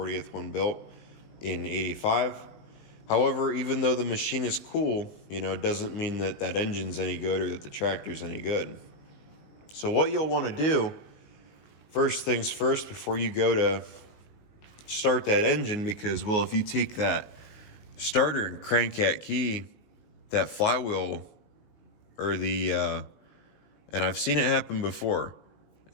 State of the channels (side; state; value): right; late; 19 ms